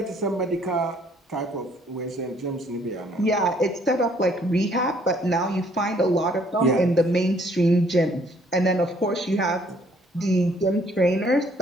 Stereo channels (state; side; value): normal; both; correlation 0.63